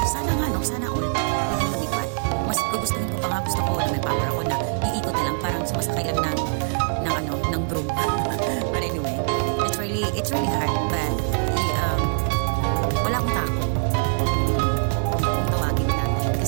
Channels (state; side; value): silent; left; digital silence